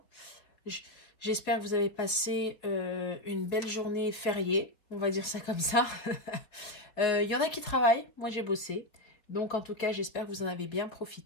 J- J'espère que vous avez passé une belle journée fériée, on va dire ça comme ça. Il y en a qui travaillent, moi j'ai bossé. Donc en tout cas, j'espère que vous en avez bien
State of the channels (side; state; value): right; late; 4.7 ms